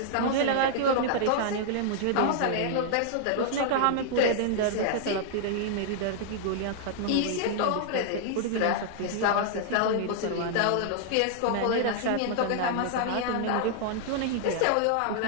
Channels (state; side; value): different; both; correlation -0.01